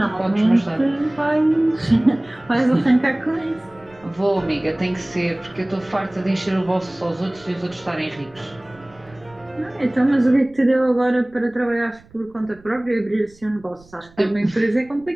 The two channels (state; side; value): noise; right; rumble, 26 dB below the sound